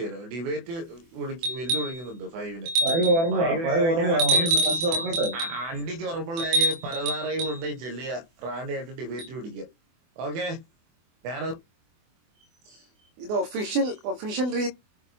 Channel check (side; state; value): left; late; 24 ms